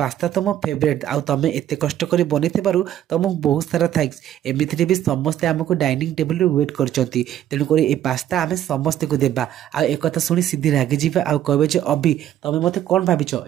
तुम फेवरेट तुम एत कष्ट कर बन तुमको बहुत सारा थैंक्स। एमती भी समस्ते आमको डाइनिंग टेबल वेट कर तेणुक ए पास्ता आम समस्त को देवा एक शुणी सिद्धि रागिजी कहे जे अभि तुम मत कौन भाविच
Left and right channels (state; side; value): quieter; left; 11.6 dB